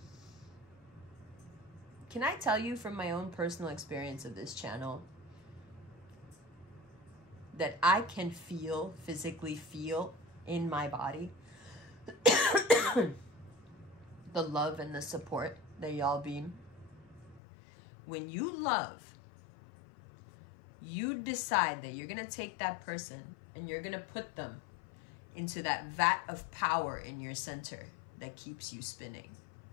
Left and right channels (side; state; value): right; drops out; at 17.4 s